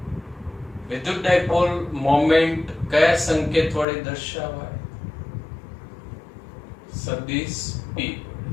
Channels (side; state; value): right; drops out; at 3.9 s